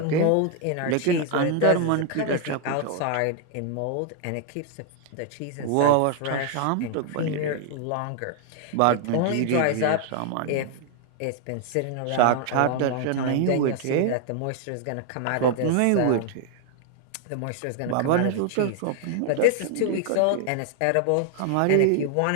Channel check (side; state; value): both; different; correlation 0.00